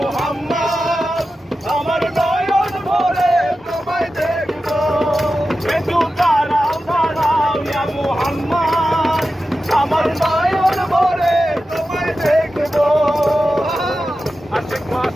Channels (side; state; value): both; normal; correlation 0.93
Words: আমার নয়ন ভরে তোমায় দেখবো একটু দাঁড়াও দাঁড়াও ইয়া মুহাম্মদ আমার নয়ন ভরে তোমায় দেখবো আশেক